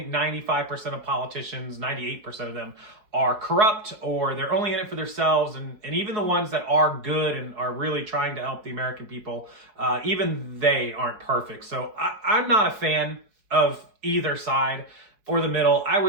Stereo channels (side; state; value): left; late; 4.7 ms